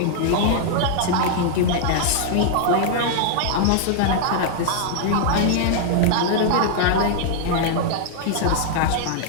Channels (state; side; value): different; both; correlation -0.01